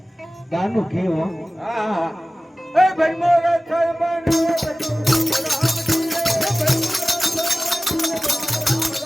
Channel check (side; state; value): both; normal; correlation 0.97